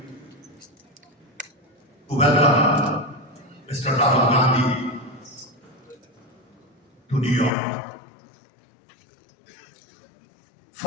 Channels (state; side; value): drops out; right; at 7.5 s